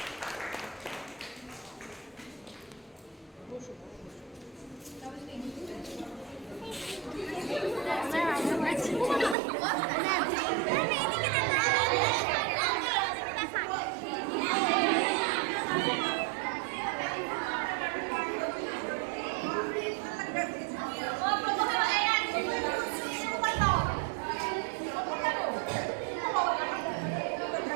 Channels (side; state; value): left; drops out; at 9.3 s